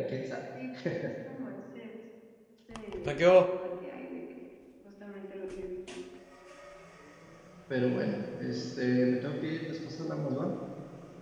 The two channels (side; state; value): both; identical; correlation 1.00